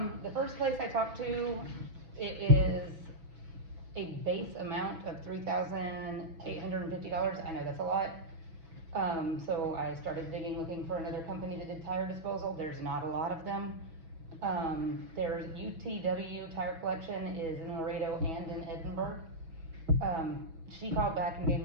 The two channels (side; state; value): left; late; 6.2 ms